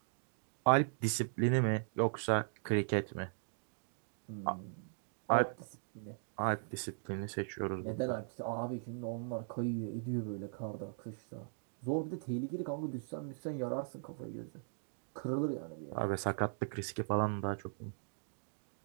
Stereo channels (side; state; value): left; silent; digital silence